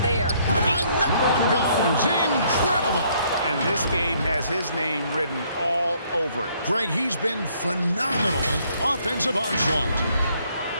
there. Another one goes. Incredible. And this game has his name written all over it. Greg, he's been phenomenal in offensive onslaught.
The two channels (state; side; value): inverted; both; correlation -0.66